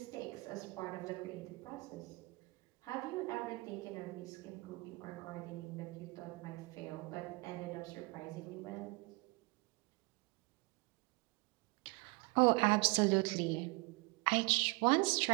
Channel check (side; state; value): left; quieter; 26.2 dB